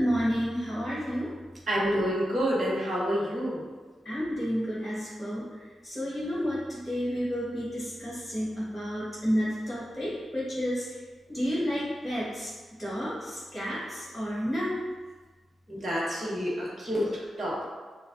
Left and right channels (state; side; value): normal; both; correlation 0.91